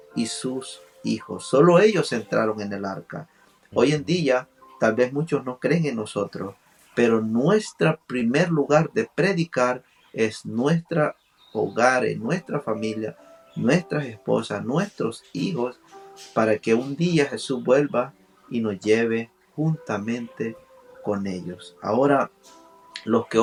y sus hijos. Solo ellos entraron en el arca. Hoy en día tal vez muchos no creen en nosotros, pero nuestro primer lugar de predicar es nuestro hogar, en nuestra familia, nuestras esposas, nuestros hijos, para que un día Jesús vuelva y nos lleve juntamente con ellos. Ahora, los que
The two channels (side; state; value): both; identical; correlation 1.00